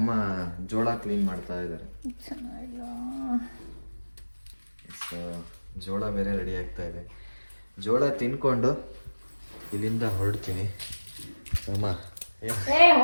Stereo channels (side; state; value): both; inverted; correlation -1.00